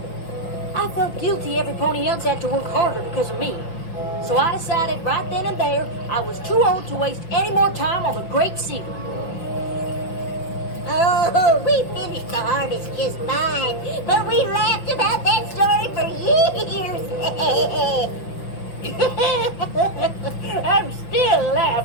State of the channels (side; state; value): right; late; 5.9 ms